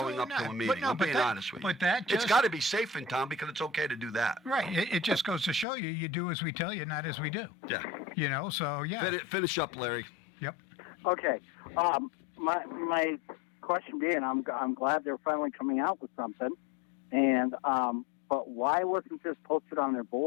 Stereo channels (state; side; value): drops out; right; at 5.7 s